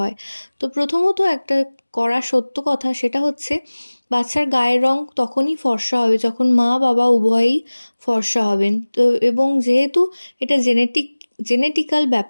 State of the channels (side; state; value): both; inverted; correlation -1.00